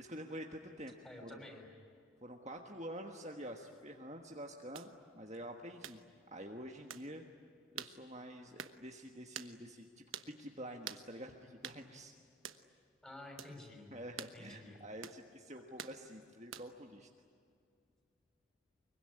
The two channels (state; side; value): normal; both; correlation 0.35